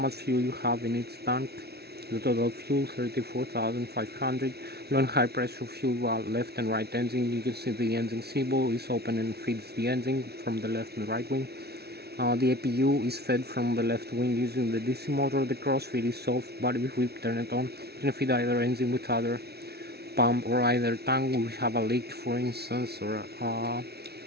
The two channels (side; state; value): left; late; 0.47 ms